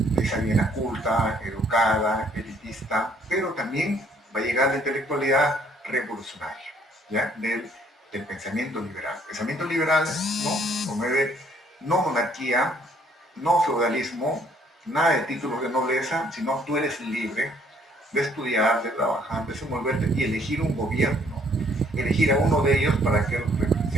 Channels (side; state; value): both; normal; correlation 0.64